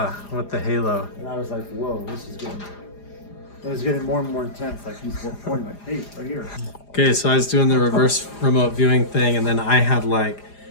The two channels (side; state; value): right; late; 4.9 ms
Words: with the halo. And I was like, whoa, it was getting more and more intense. Like he's pointing like, hey, right here. Okay, so I was doing the reverse remote viewing thing, and then I had like